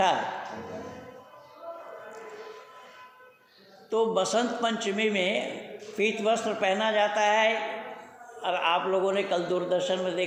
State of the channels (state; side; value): identical; both; correlation 1.00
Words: है। तो बसंत पंचमी में पीत वस्त्र पहना जाता है। और आप लोगों ने कल दूरदर्शन में